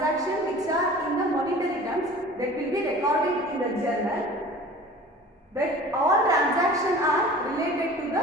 which are in the monetary terms that will be recorded in the journal. But all transactions are related to the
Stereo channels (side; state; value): both; normal; correlation 0.42